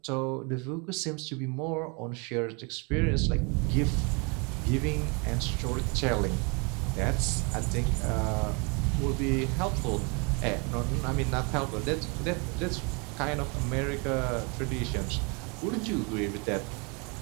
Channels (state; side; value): quieter; left; 32.3 dB